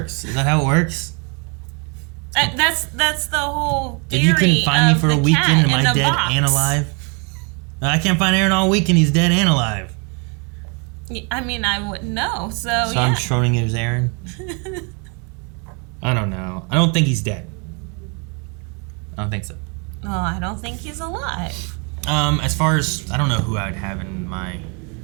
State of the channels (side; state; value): left; quieter; 34.9 dB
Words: Is that how it works? That's the whole theory. If you couldn't find me for a weekend, am I dead box. and alive? I can't find Aaron all weekend. He's dead and alive. I mean, I wouldn't know. So yeah. I'm Schrodinger's Aaron. I don't know. I don't think he's dead. I don't think so. Well, I don't think he's alive. As far as I don't know who I would have in my